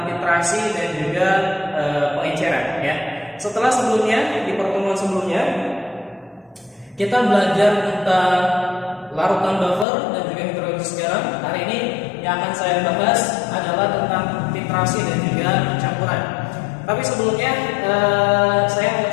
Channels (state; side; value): drops out; right; at 9.9 s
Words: titrasi dan juga pengenceran. Ya, setelah sebelumnya di pertemuan sebelumnya kita belajar tentang larutan buffer dan juga hidrolisis garam. Hari ini yang akan saya bahas adalah tentang titrasi dan juga campuran. Tapi sebelumnya saya